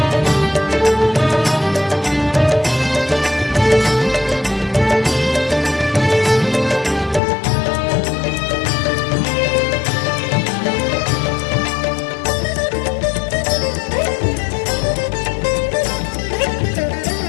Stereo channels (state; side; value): drops out; right; at 7.2 s